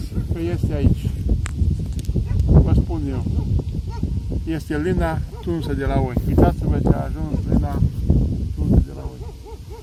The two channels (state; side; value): identical; both; correlation 1.00